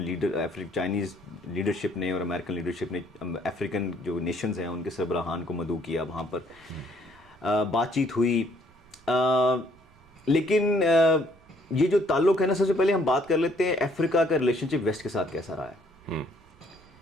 نے اور امریکن لیڈرشپ نے افریقن جو نیشنز ہیں ان کے سربراہان کو مدعو کیا، وہاں پر بات چیت ہوئی۔ لیکن یہ جو تعلق ہے نا، سب سے پہلے ہم بات کر لیتے ہیں افریقہ کا ریلیشن شپ ویسٹ کے ساتھ کیسا رہا ہے۔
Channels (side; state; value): right; noise; rumble, 28 dB below the sound